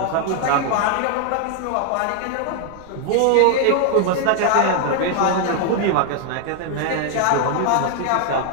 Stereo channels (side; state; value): both; different; correlation 0.00